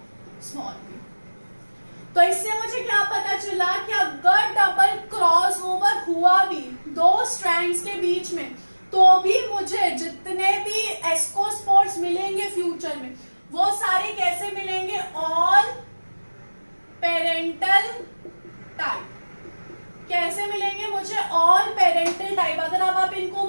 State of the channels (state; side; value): inverted; both; correlation -1.00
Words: small B. तो इससे मुझे क्या पता चला कि अगर डबल क्रॉस ओवर हुआ भी दो स्ट्रैंड्स के बीच में, तो भी मुझे जितने भी एस्कोस्पोर्स मिलेंगे फ्यूचर में वो सारे कैसे मिलेंगे? All parental type. कैसे मिलेंगे मुझे? All parental type. अगर अब आप इनको